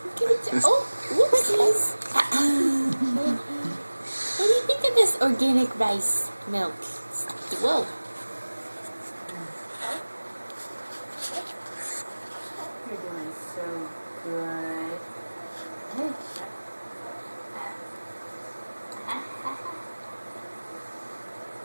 Good job. Oh, whoopsies. What do you think of this organic rice milk? Whoa. You're doing so good.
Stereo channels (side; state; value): both; inverted; correlation -1.00